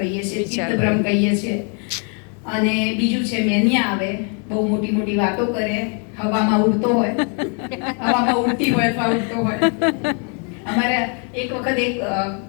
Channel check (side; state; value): right; quieter; 39.2 dB